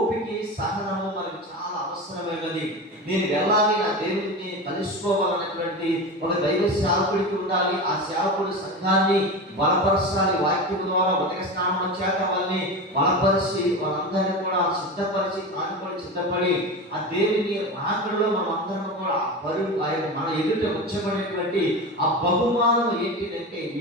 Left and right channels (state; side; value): normal; both; correlation 0.25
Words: సహనము మనకు చాలా అవసరమైనది. నేను వెళ్ళాలి, నా దేవుడిని కలుసుకోవాలన్నటువంటి ఒక దైవ సేవకుడికి ఉండాలి. ఆ సేవకుడు సంఘాన్ని బలపరచాలి, వాక్యం ద్వారా ఉదక స్నానం చేత వాళ్ళని బలపరిచి వాళ్ళందరినీ కూడా సిద్ధపరిచి, తాను కూడా సిద్ధపడి ఆ దేవుని రాకడలో మనం అందరం కూడా పరుగు మన ఎదుట ఉంచబడినటువంటి ఆ బహుమానం ఏంటిదంటే,